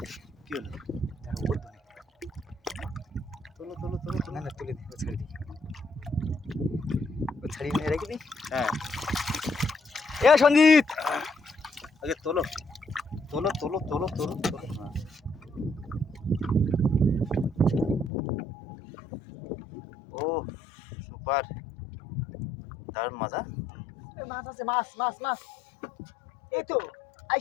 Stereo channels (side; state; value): right; drops out; at 18.1 s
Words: কি হলো? তোলো তোলো তোলো তোলো। না না তুলে দিই, ও ছাড়ি দিই, ও ছাড়িয়ে নিয়ে রেখে দিই। হ্যাঁ, এ সঞ্জিত, আগে তোলো তোলো তোলো তোলো তোলো তোলো। হ্যাঁ। ও সুপার, দারুণ মজা। মাছ আছে, মাছ মাছ মাছ। এই তো